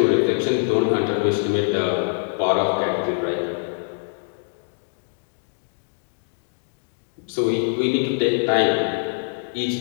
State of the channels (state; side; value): silent; right; digital silence